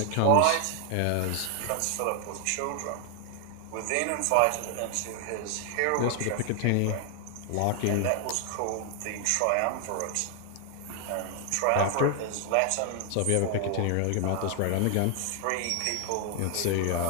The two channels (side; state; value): both; different; correlation 0.00